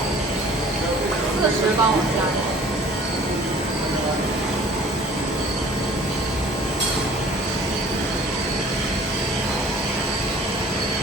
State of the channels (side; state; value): both; normal; correlation 0.50